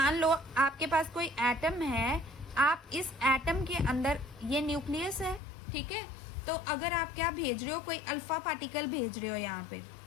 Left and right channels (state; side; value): drops out; right; at 5.4 s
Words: लो आपके पास कोई एटम है, आप इस एटम के अंदर, ये न्यूक्लियस है. ठीक है, तो अगर आप क्या भेज रहे हो, कोई अल्फा पार्टिकल भेज रहे हो यहाँ पे.